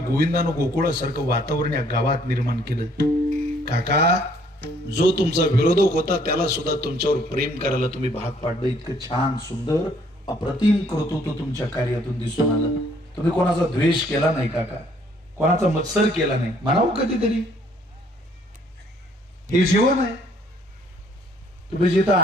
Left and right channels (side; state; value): both; normal; correlation 0.63